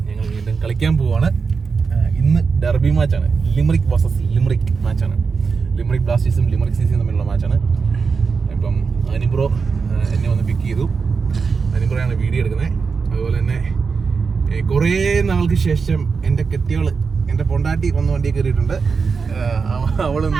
ഞങ്ങൾ വീണ്ടും കളിക്കാൻ പോവാണ്. ഇന്ന് ഡെർബി മാച്ചാണ്. ലിമറിക് വേഴ്സസ് ലിമറിക് മാച്ചാണ്. ലിമറിക് ബ്ലാസ്റ്റേഴ്സും ലിമറിക് സിസിയും തമ്മിലുള്ള മാച്ചാണ്. ഇപ്പം അനിബ്രോ എന്നെ വന്ന് പിക്ക് ചെയ്തു. അനിബ്രോയാണ് വീഡിയോ എടുക്കുന്നത്. അതുപോലെ തന്നെ കുറേ നാൾക്ക് ശേഷം എൻ്റെ കെട്ടിയോള്, എൻ്റെ പൊണ്ടാട്ടി വന്ന് വണ്ടി കയറിയിട്ടുണ്ട്.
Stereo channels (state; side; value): quieter; left; 5.2 dB